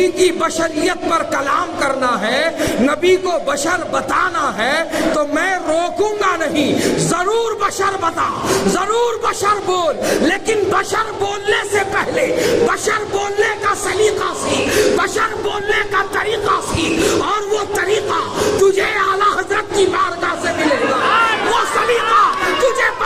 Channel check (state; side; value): identical; both; correlation 1.00